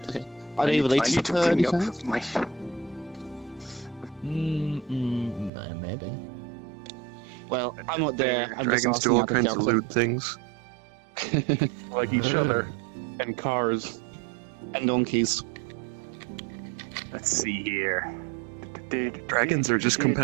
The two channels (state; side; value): drops out; left; at 5.5 s